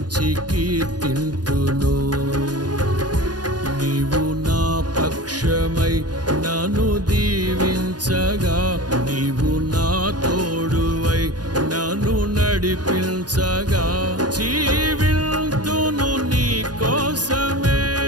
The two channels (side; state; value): left; late; 0.69 ms